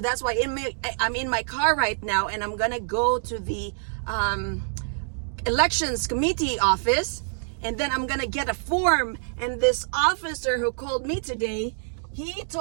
why I'm in my car right now, and I'm gonna go to the elections committee office, and then I'm gonna get a form. And this officer who called me today, he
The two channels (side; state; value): left; silent; digital silence